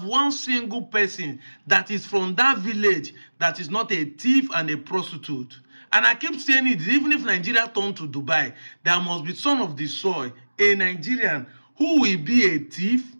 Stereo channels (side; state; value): both; inverted; correlation -1.00